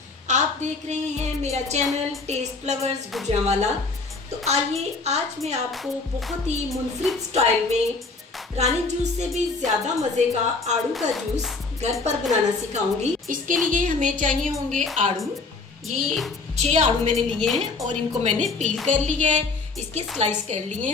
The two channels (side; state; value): right; quieter; 4.0 dB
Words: आप देख रहे हैं मेरा चैनल टेस्ट फ्लावर्स गुजरांवाला। तो आइए आज मैं आपको बहुत ही मुनफरिद स्टाइल में रानी जूस से भी ज़्यादा मज़े का आड़ू का जूस घर पर बनाना सिखाऊंगी। इसके लिए हमें चाहिए होंगे आड़ू। ये 6 आड़ू मैंने लिए हैं और इनको मैंने पील कर लिया है, इसके स्लाइस कर लिए